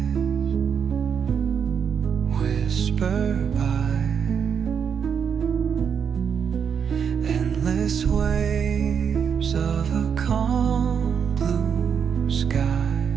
whisper by, endless waves of a calm blue sky,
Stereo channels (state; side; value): quieter; left; 7.1 dB